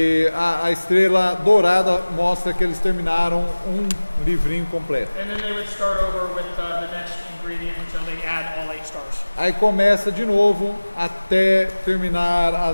a estrela dourada mostra que eles terminaram um livrinho completo. And then they would start over with the next ingredient until they add all 8 stars. Aí começa de novo até terminar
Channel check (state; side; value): inverted; both; correlation -1.00